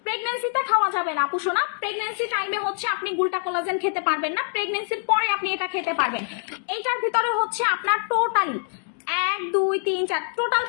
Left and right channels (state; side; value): silent; right; digital silence